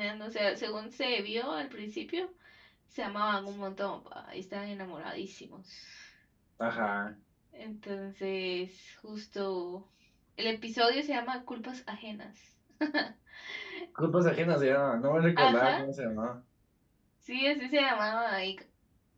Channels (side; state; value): both; identical; correlation 1.00